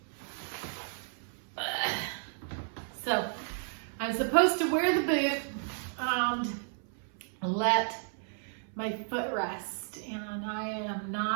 So I'm supposed to wear the boot and let my foot rest, and I am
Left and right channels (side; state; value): left; silent; 56 dB below the other